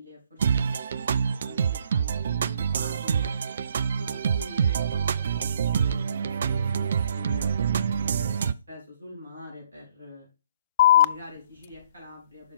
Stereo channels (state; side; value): inverted; both; correlation -0.63